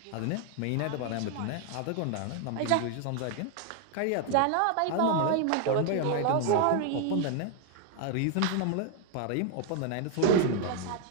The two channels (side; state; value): both; different; correlation 0.00